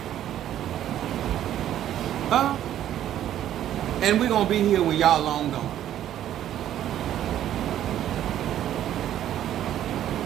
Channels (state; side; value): quieter; left; 11.5 dB